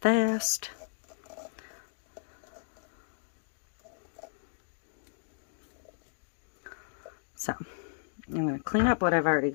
fast. So I'm going to clean up what I've already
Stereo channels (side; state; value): right; silent; digital silence